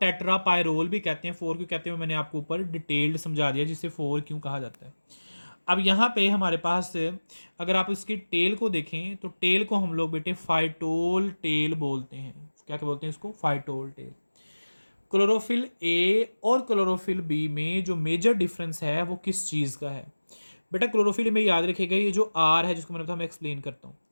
भी कहते हैं। 4 क्यों कहते हैं मैंने आपको ऊपर डिटेल्ड समझा दिया, जिसे 4 क्यों कहा जाता है। अब यहाँ पे हमारे पास अगर आप इसकी टेल को देखें तो टेल को हम लोग बेटे फाइटोल टेल बोलते हैं। क्या क्या बोलते हैं इसको, फाइटोल टेल। क्लोरोफिल ए और क्लोरोफिल बी में जो मेजर डिफरेंस है वो किस चीज़ का है। बेटा क्लोरोफिल में याद रखिएगा ये जो आर है जिसको मैंने बताया, मैं एक्सप्लेन करता हूँ।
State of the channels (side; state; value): both; inverted; correlation -1.00